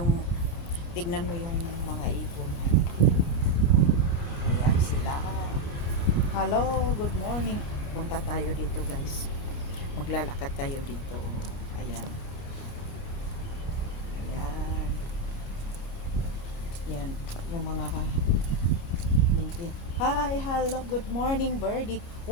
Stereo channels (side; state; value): right; late; 28 ms